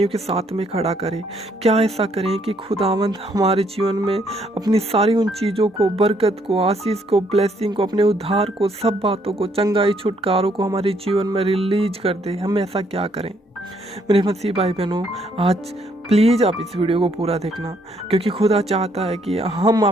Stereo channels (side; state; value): both; normal; correlation 0.70